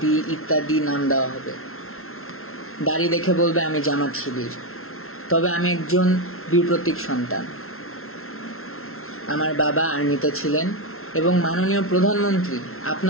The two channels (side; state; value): right; late; 0.62 ms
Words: ইত্যাদি নাম দেওয়া হবে। দাড়ি দেখে বলবে আমি জামাত শিবির, তবে আমি একজন বীর প্রতীক সন্তান। আমার বাবা আর্মিতে ছিলেন এবং মাননীয় প্রধানমন্ত্রী